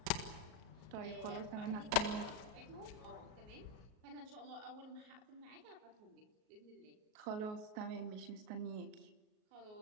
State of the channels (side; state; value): left; late; 38 ms